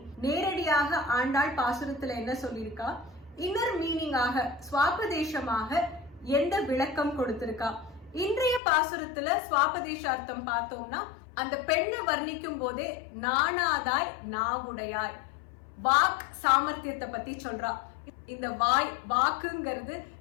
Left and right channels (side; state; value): right; drops out; at 8.6 s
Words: நேரடியாக ஆண்டாள் பாசுரத்துல என்ன சொல்லியிருக்கா, இன்னர் மீனிங்காக ஸ்வாபதேசமாக எந்த விளக்கம் கொடுத்திருக்கா. இன்றைய பாசுரத்துல ஸ்வாபதேச அர்த்தம் பார்த்தோம்னா அந்த பெண்ணை வர்ணிக்கும் போதே நாணாதாய் நாவுடையாய் வாக் சாமர்த்தியத்தை பத்தி சொல்றா. இந்த வாக்குங்கிறது